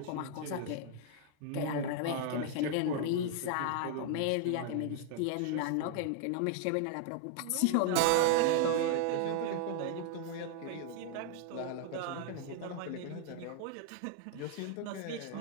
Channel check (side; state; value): both; different; correlation 0.00